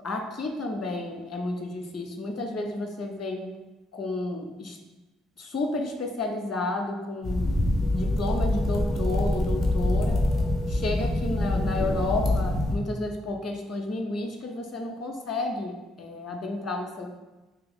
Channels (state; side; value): normal; both; correlation 0.79